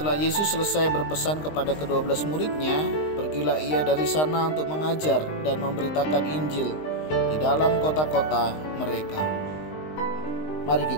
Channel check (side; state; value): right; late; 19 ms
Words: Yesus selesai berpesan kepada ke-12 muridnya, pergilah ia dari sana untuk mengajar dan memberitakan Injil di dalam kota-kota mereka. Mari